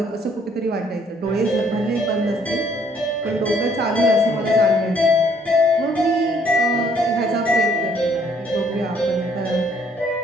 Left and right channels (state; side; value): normal; both; correlation 0.64